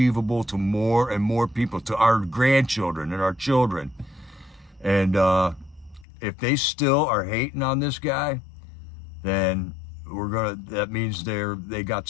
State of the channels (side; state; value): right; drops out; at 6.1 s